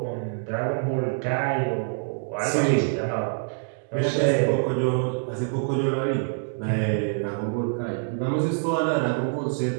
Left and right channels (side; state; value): left; silent; digital silence